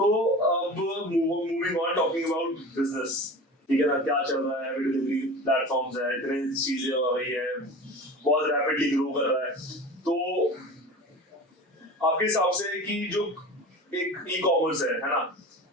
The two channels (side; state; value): both; normal; correlation 0.34